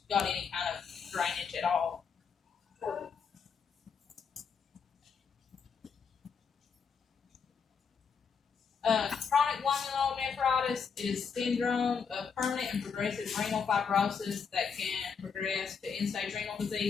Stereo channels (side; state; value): right; quieter; 6.1 dB